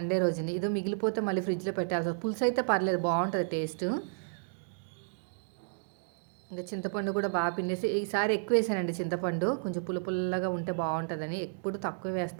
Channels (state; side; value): silent; left; digital silence